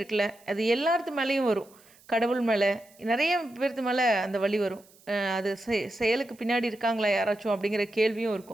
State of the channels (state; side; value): noise; right; hiss, 28 dB below the sound